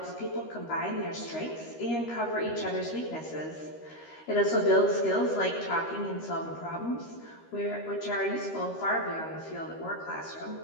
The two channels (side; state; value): right; late; 13 ms